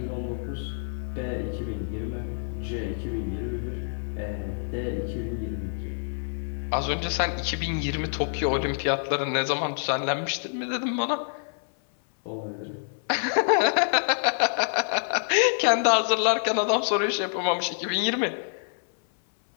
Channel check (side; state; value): right; silent; 60 dB below the other